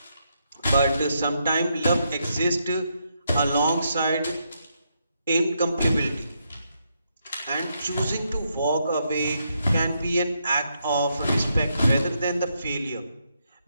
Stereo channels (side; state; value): both; inverted; correlation -0.79